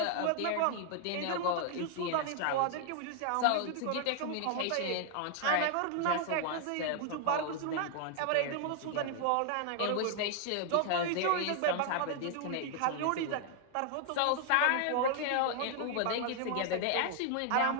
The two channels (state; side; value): different; both; correlation 0.00